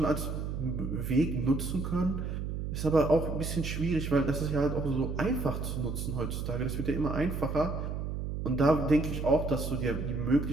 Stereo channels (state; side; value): noise; right; hum, 4 dB below the sound